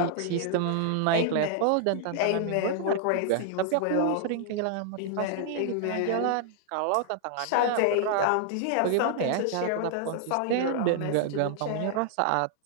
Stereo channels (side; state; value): both; different; correlation 0.00